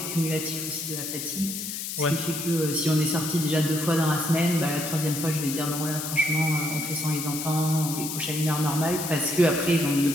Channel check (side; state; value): left; noise; hiss, 5 dB below the sound